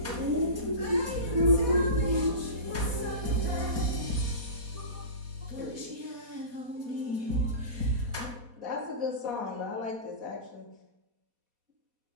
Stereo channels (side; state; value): left; late; 4.1 ms